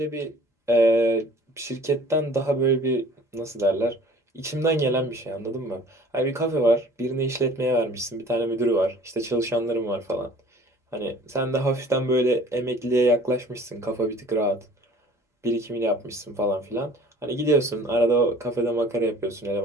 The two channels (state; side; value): normal; both; correlation 0.49